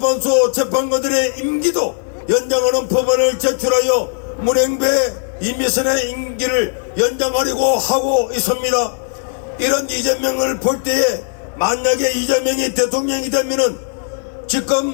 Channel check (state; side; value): silent; right; digital silence